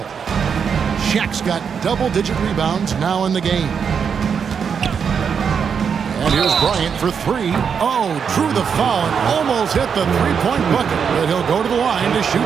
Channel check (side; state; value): left; quieter; 6.7 dB